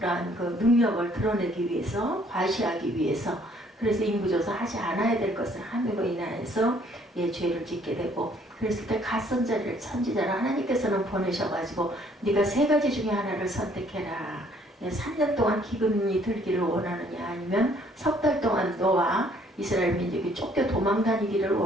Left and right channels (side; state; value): both; normal; correlation 0.62